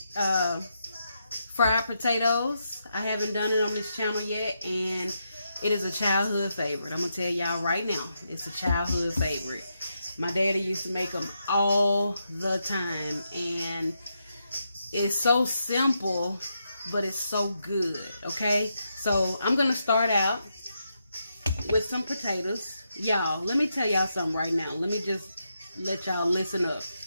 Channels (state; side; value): inverted; both; correlation -0.83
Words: fried potatoes. I haven't done it on this channel yet, and it is a childhood favorite. I'm going to tell y'all right now, it's a childhood favorite. My daddy used to make them all the time, and it's so simple, but it's so good, okay? So I'm going to start out with some potatoes. Y'all, let me tell y'all something right now. Let me just let y'all listen up.